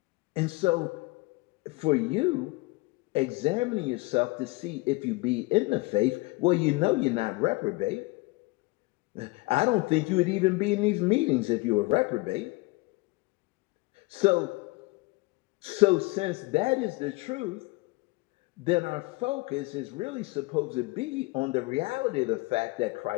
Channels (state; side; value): quieter; right; 23.7 dB